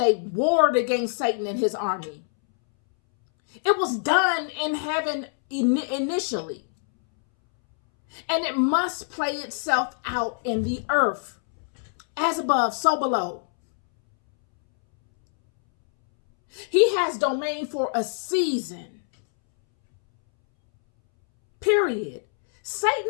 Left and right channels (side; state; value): right; silent; 62 dB below the other